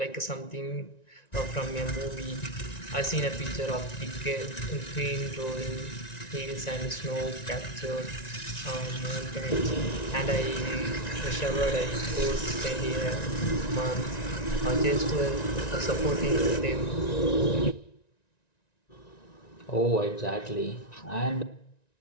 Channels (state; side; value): late; right; 1.9 ms